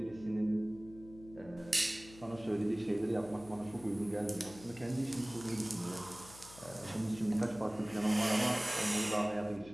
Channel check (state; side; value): noise; left; hum, 19 dB below the sound